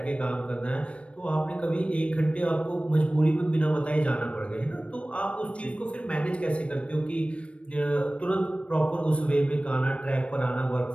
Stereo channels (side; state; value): right; late; 0.061 ms